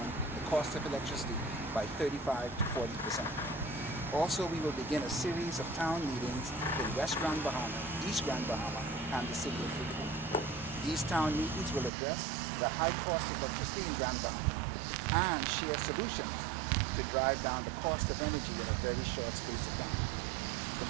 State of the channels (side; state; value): left; drops out; at 11.9 s